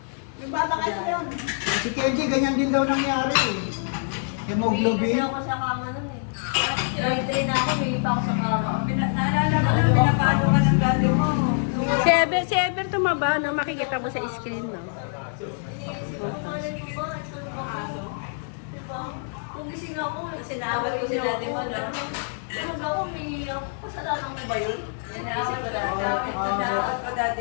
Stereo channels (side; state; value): right; silent; digital silence